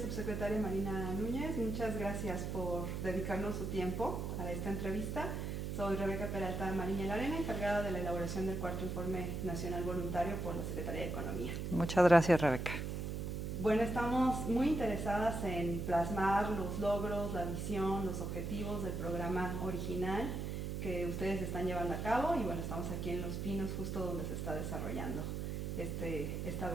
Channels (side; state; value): right; noise; hum, 3 dB below the sound